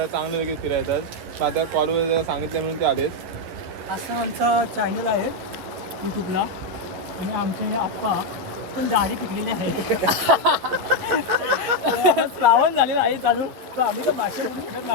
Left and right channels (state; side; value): late; left; 12 ms